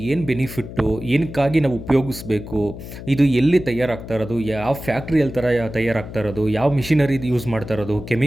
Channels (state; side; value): noise; left; hum, 12 dB below the sound